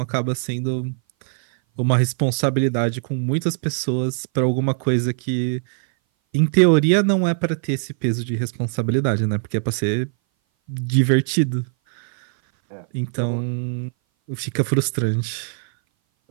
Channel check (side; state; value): left; silent; 59 dB below the other